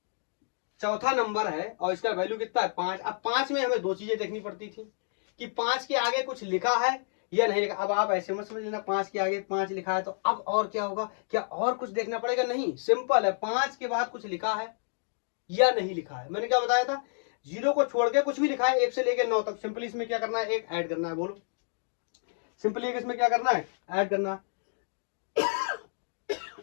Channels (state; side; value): silent; right; digital silence